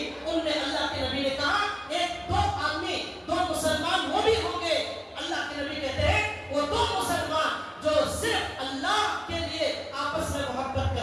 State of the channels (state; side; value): identical; both; correlation 1.00